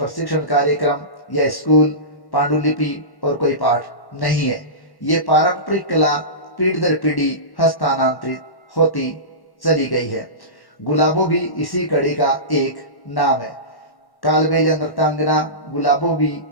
कार्यक्रम या स्कूल, पांडुलिपि और कोई पाठ नहीं है। ये पारंपरिक कला पीढ़ी दर पीढ़ी हस्तांतरित होती चली गई है। गुलाबो भी इसी कड़ी का एक नाम है। कालबेलिया नृत्यांगना गुलाबो भी,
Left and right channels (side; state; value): right; late; 1.1 ms